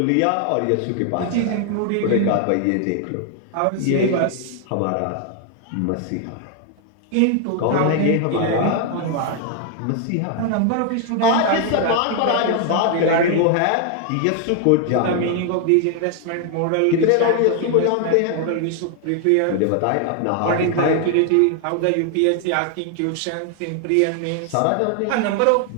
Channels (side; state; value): both; different; correlation 0.00